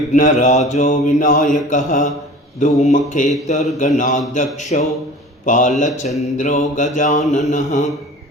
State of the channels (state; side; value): normal; both; correlation 0.41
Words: विनायकः धूमकेतुर्गणाध्यक्षो बालचन्द्रो गजाननः